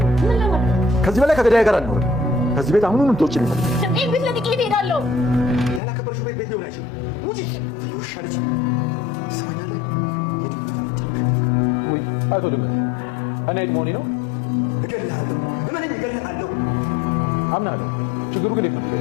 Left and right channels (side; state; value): right; drops out; at 5.8 s